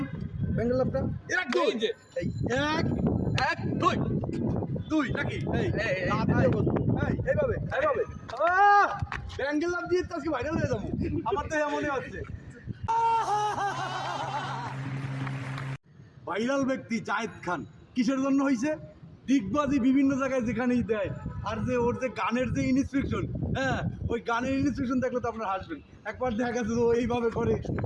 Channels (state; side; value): identical; both; correlation 1.00